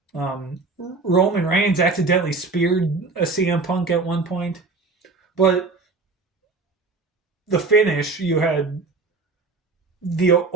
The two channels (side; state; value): left; quieter; 3.9 dB